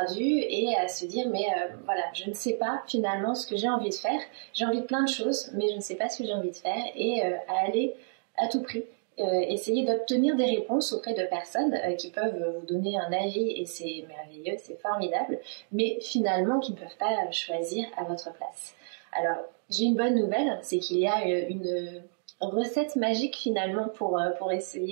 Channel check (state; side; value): silent; left; digital silence